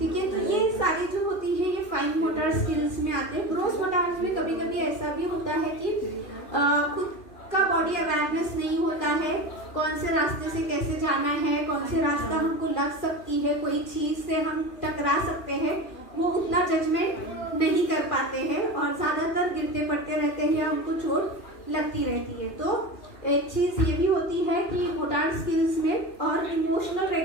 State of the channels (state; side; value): late; right; 2.9 ms